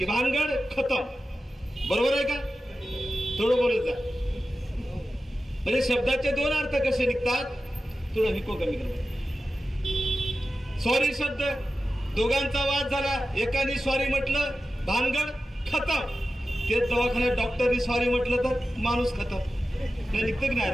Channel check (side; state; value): both; normal; correlation 0.93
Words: भानगड खतम। बरोबर आहे का? थोडं बोलत जा। म्हणजे शब्दाचे 2 अर्थ कसे निघतात, थोडं हिको कमी करा। सॉरी शब्द, दोघांचा वाद झाला, एकाने सॉरी म्हटलं, भानगड खतम। तेच दवाखान्यात डॉक्टरनी सॉरी म्हटलं तर माणूस खतम, निघतं की नाही?